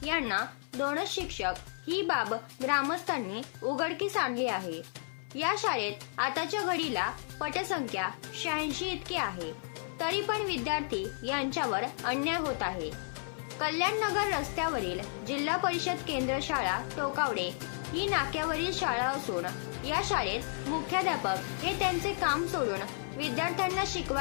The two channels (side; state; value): right; silent; 56 dB below the other